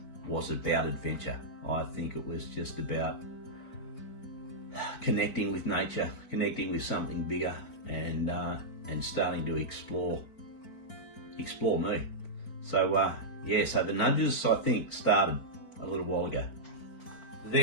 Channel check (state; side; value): late; right; 4.5 ms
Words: was about adventure. I think it was just about connecting with nature, connecting with something bigger, and starting to explore me. So yeah, so the nudges, I think, started a little while ago.